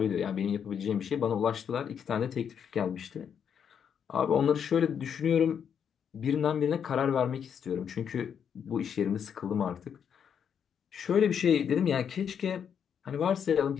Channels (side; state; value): right; quieter; 7.8 dB